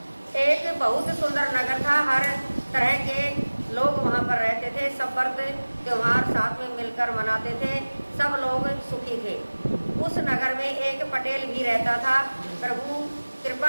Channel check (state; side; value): inverted; both; correlation -1.00